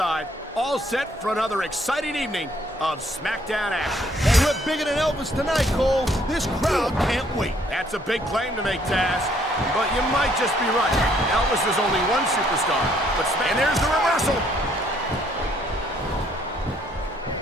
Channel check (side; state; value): both; normal; correlation 0.66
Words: all set for another exciting evening of Smackdown action. Hey, we're bigger than Elvis tonight, Cole. This crowd can't wait. That's a big claim to make, Taz. But you might just be right. Elvis is only one superstar. And there's the reversal.